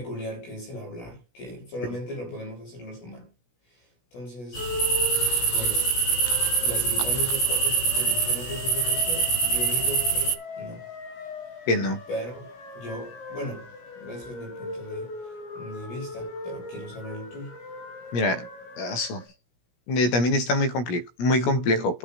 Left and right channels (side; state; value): right; late; 17 ms